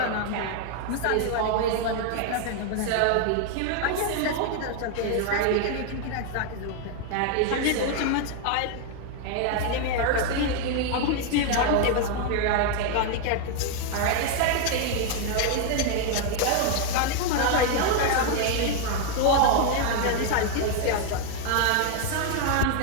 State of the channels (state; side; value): different; both; correlation 0.00